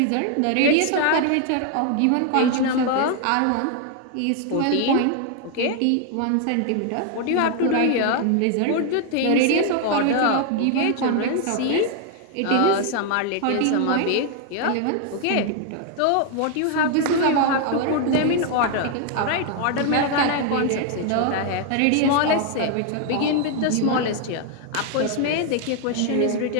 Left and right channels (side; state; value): both; different; correlation 0.00